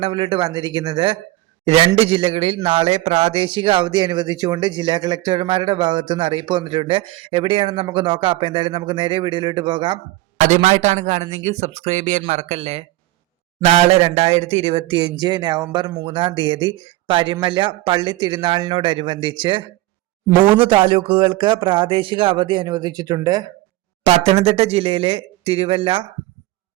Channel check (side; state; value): left; quieter; 17.9 dB